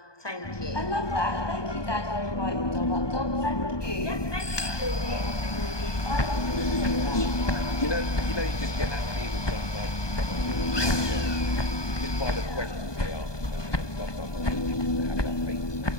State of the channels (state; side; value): late; right; 1.2 ms